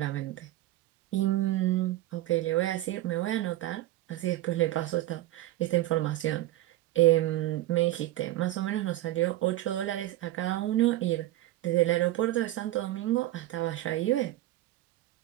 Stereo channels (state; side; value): quieter; left; 15.6 dB